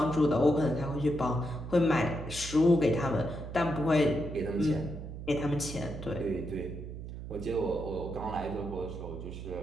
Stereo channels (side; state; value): right; noise; hum, 9 dB below the sound